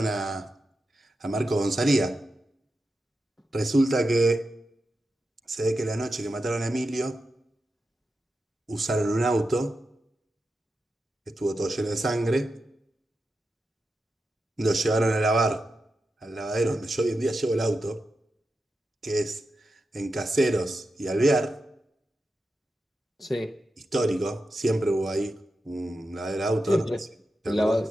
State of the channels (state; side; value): normal; both; correlation 0.90